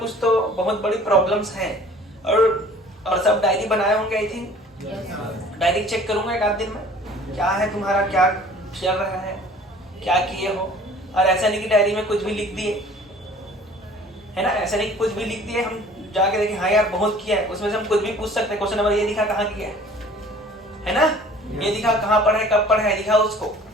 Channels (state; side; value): normal; both; correlation 0.49